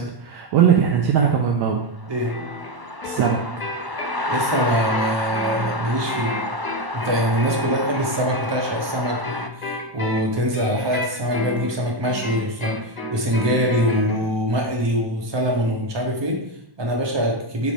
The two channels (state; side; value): late; left; 1.1 ms